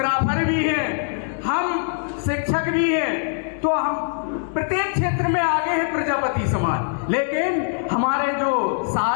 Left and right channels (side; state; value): right; silent; digital silence